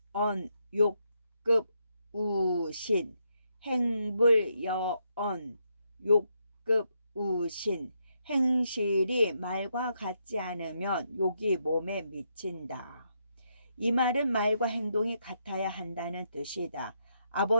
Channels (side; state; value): both; inverted; correlation -0.79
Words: 욕급 우신 행불여언 욕급 우신 행실이 말과 같지 않으면 욕이 몸에 미친다. 이 말은 말과 행동이 같아야 한다는 뜻이다.